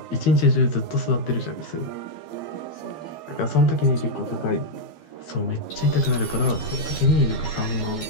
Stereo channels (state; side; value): late; right; 12 ms